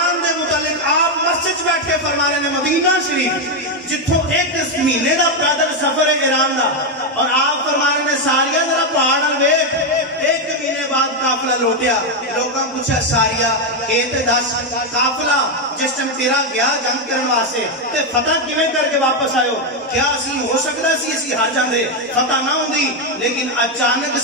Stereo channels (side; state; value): both; normal; correlation 0.05